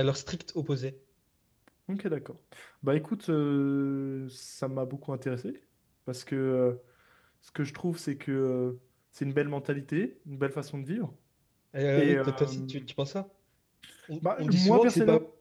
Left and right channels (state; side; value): identical; both; correlation 1.00